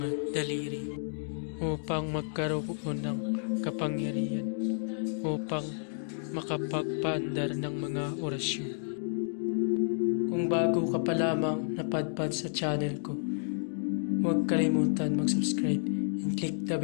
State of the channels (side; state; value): right; silent; digital silence